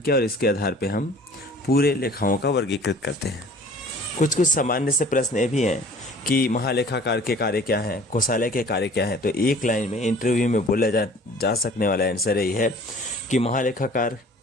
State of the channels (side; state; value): both; normal; correlation 0.49